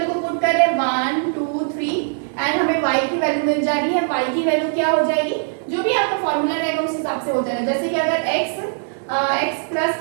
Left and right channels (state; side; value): silent; left; digital silence